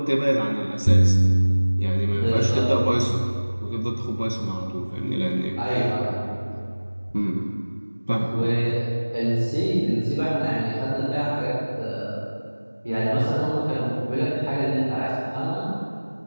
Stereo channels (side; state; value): both; inverted; correlation -1.00